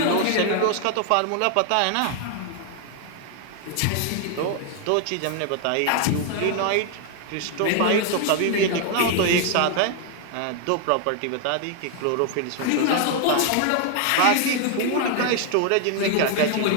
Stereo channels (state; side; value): different; both; correlation 0.00